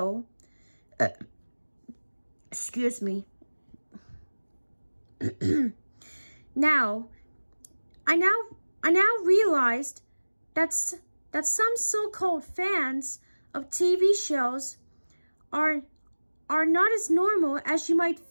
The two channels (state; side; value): inverted; both; correlation -1.00